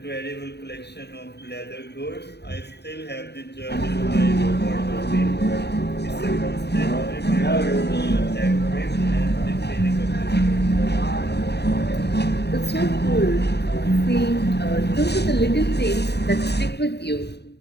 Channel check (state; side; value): late; right; 0.49 ms